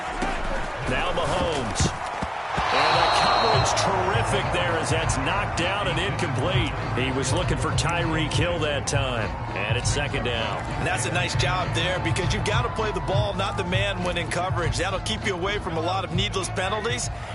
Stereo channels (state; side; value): identical; both; correlation 1.00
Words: Now Mahomes. And the coverage terrific there as that's knocked down and incomplete. He was looking for Tyreek Hill that time. And it's second down. And that's a nice job there because you've got to play the ball, not the man when in coverage. That'll keep you away from a lot of needless penalties.